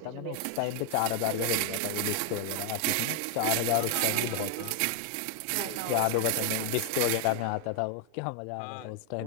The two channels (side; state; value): both; different; correlation 0.00